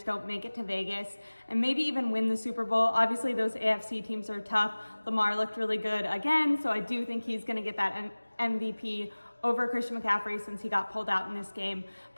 don't make it to Vegas and maybe even win the Super Bowl. Obviously those AFC teams are tough. Lamar looked really good again, so I do think he's gonna get that MVP over Christian McCaffrey since he got pulled out in this game.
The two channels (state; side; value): inverted; both; correlation -1.00